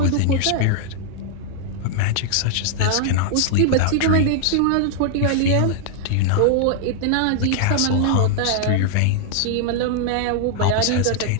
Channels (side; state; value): both; different; correlation -0.01